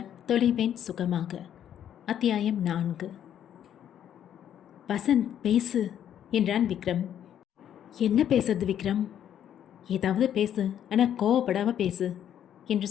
தொலைவேன் சுகமாக. அத்தியாயம் 4. வசந்த் பேசு என்றான் விக்ரம். என்ன பேசுறது விக்ரம்? ஏதாவது பேசு, ஆனால் கோவப்படாமல் பேசு என்று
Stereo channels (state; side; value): quieter; right; 10.0 dB